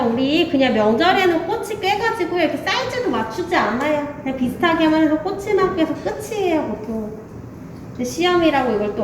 우리 그냥 명절에는 꼬치 꿰가지고 이렇게 사이즈도 맞추지 않아요. 그냥 비슷하게만 해서 꼬치만 꿰서 끝이에요, 보통. 근데 시험이라고 이걸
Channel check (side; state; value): both; identical; correlation 1.00